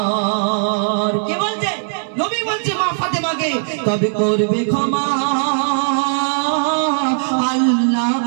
কে বলছে? নবী বলছে মা ফাতেমাকে, তবে করবে ক্ষমা আল্লাহ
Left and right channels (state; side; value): silent; left; 61 dB below the other